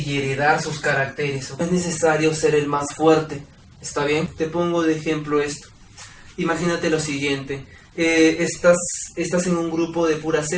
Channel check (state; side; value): identical; both; correlation 1.00